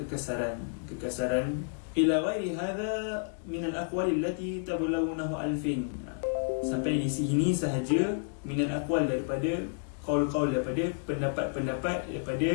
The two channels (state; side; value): silent; right; digital silence